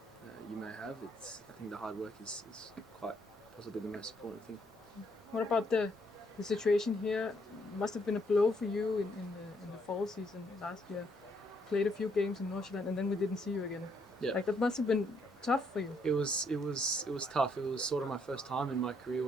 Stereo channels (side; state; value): both; normal; correlation 0.72